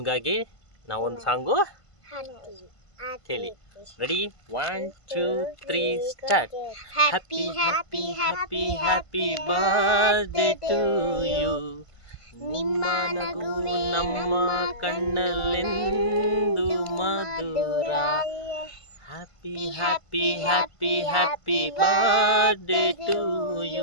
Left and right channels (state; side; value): late; right; 1.5 ms